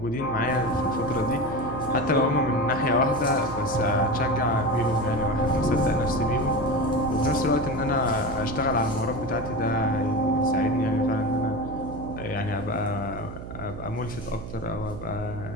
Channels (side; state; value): right; noise; hum, 10 dB below the sound